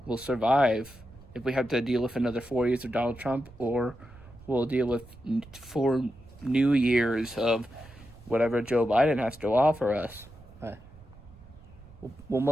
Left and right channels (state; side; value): noise; right; rumble, 21 dB below the sound